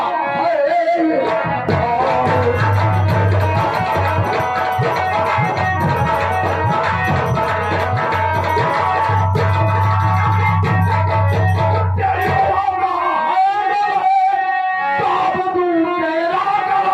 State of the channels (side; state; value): both; identical; correlation 1.00